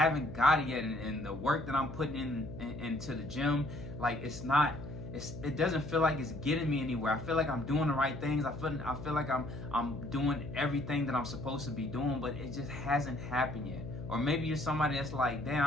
got it yet. And the work that I'm putting into the gym, like it doesn't feel like it's getting me anywhere. I feel like I'm doing the right things. I feel like I'm doing everything that I'm supposed to be doing, but it just hasn't happened yet. Or maybe you're somebody that's like, damn,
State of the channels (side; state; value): left; noise; hum, 11 dB below the sound